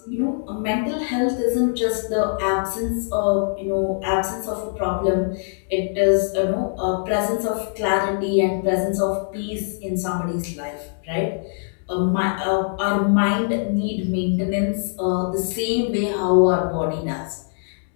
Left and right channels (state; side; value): silent; right; digital silence